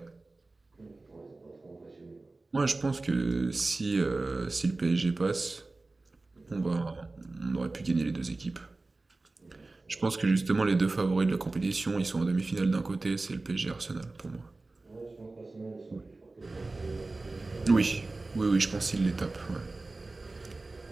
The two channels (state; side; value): quieter; left; 3.3 dB